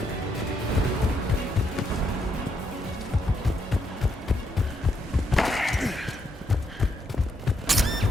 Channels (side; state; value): both; normal; correlation 0.77